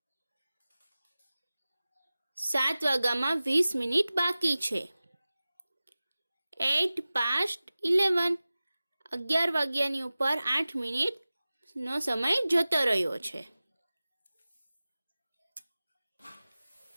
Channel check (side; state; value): both; inverted; correlation -0.97